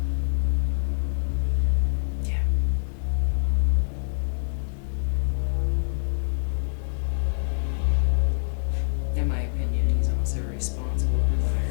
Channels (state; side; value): silent; right; digital silence